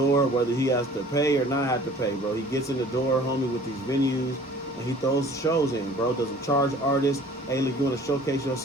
whether he has to pay or not have to pay, bro. He gets in the door, homie, with these venues. And he throws shows in, bro. Doesn't charge artists. Hey, look, you want to showcase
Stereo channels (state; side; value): normal; both; correlation 0.49